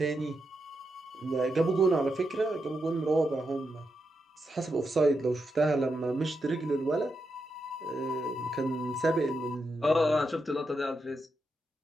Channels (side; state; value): both; normal; correlation 0.85